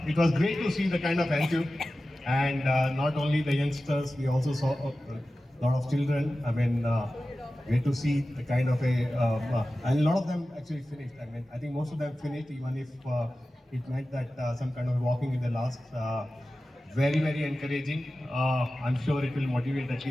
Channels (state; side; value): normal; both; correlation 0.95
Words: It was great to see the kind of attitude, and not only the youngsters, we also saw a lot of children. I mean, great to see the kind of and a lot of them actually finished. I mean, I think most of them finished, even if it meant that some kind of walking in the last. Very, very encouraging. I'm sure it will motivate at